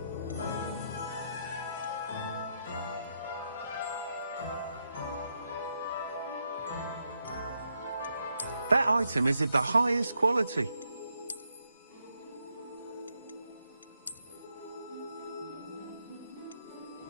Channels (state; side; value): inverted; both; correlation -0.80